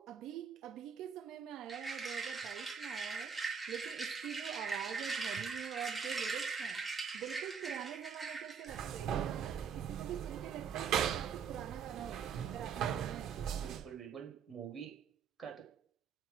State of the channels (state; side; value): quieter; left; 6.8 dB